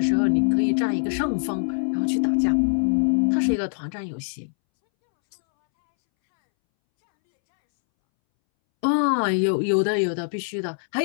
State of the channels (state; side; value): silent; right; 63 dB below the other